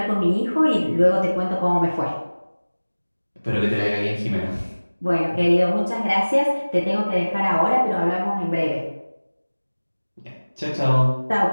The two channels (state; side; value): inverted; both; correlation -1.00